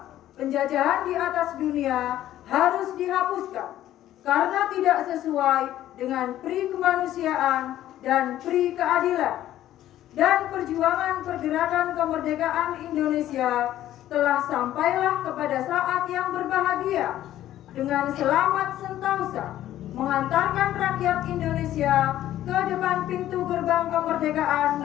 penjajahan di atas dunia harus dihapuskan karena tidak sesuai dengan pri kemanusiaan dan pri keadilan. Dan perjuangan pergerakan kemerdekaan Indonesia telah sampailah kepada saat yang berbahagia dengan selamat sentosa mengantarkan rakyat Indonesia ke depan pintu gerbang kemerdekaan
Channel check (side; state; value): right; quieter; 13.0 dB